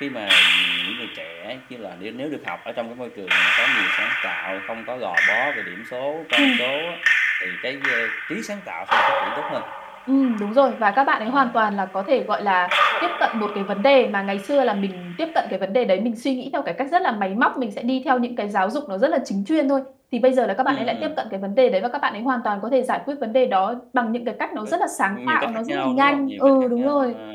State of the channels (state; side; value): identical; both; correlation 1.00